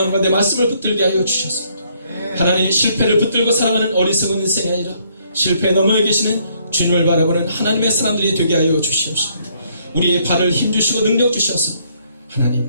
가운데 말씀을 붙들게 하여 주셔서 하나님, 실패를 붙들고 살아가는 어리석은 인생이 아니라 실패에 넘어 계시는 주님을 바라보는 하나님의 사람들이 되게 하여 주시옵소서. 우리의 발을 힘주시고 능력 주셔서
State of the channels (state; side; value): inverted; both; correlation -0.68